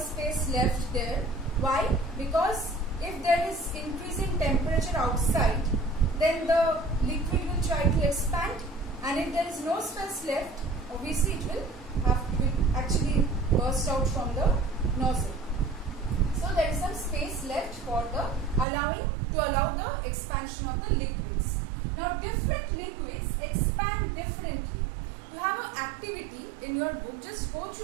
left there. Why? Because if there is increasing temperature outside, then the liquid will try to expand, and if there is no space left, obviously it will actually burst out from the nozzle. So there is some space left for the allow the expansion of the liquids. Now different liquids expand differently. You have an activity in your book. Just go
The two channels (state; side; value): drops out; left; at 18.7 s